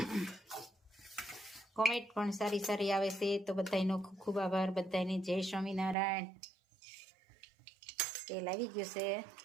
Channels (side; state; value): left; drops out; at 6.0 s